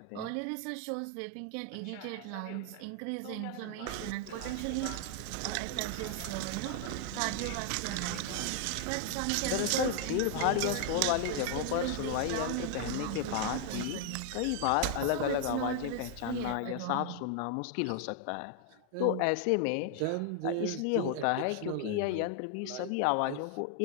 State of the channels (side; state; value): both; different; correlation 0.00